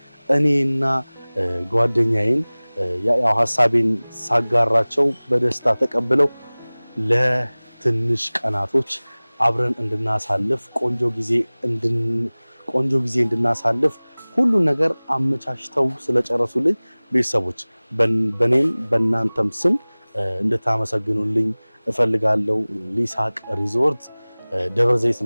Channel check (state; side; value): inverted; both; correlation -1.00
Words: እኔና ጓደኛዬን ያው ሐሳቤን ሳጋራቸው በደስታ ተቀብለው ለትንሽ ቀናቶች አብረን እንድናሳልፍ ቆንጆ ጊዜ እንድናሳልፍ ሁሉ ነገር አመቻችተው ስለጨረሱልኝ ቤተሰቦች በኔም በእናንተም ስም እንድታመሰግኑልኝ እፈልጋለሁ። ሊሳቅ ሪዞርት ደብረ ዘይት